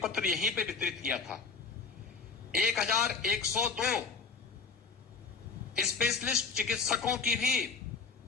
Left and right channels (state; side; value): quieter; right; 5.1 dB